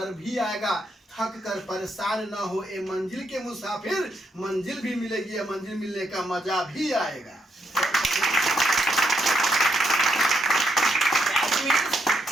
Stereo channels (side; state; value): both; normal; correlation 0.78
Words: भी आएगा। थक कर परेशान न हो ए मंजिल के मुसाफिर, मंजिल भी मिलेगी, या मंजिल मिलने का मजा भी आएगा।